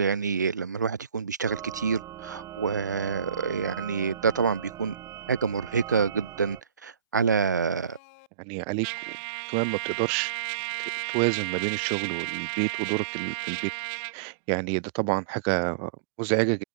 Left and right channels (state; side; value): drops out; left; at 8.2 s